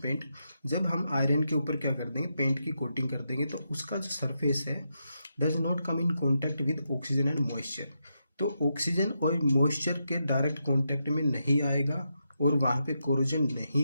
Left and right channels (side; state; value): both; inverted; correlation -0.84